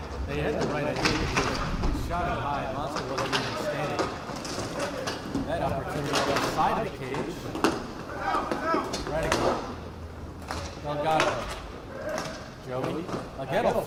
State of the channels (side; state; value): both; identical; correlation 1.00